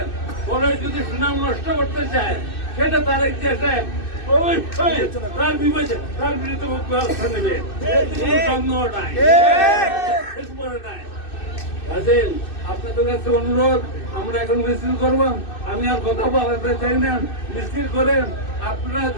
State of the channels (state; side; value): late; right; 2.6 ms